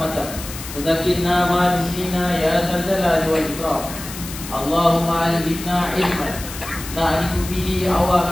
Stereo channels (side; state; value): left; noise; hiss, 11 dB below the sound